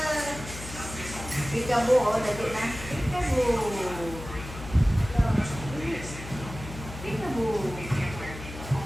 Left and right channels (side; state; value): left; noise; hum, 12 dB below the sound